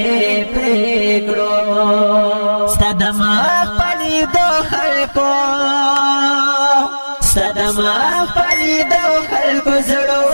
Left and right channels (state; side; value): inverted; both; correlation -1.00